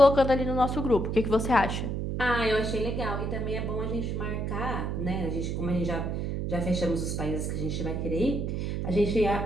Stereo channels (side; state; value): right; noise; hum, 2 dB below the sound